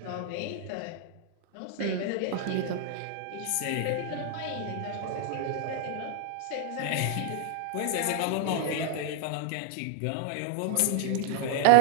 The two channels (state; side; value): different; both; correlation 0.00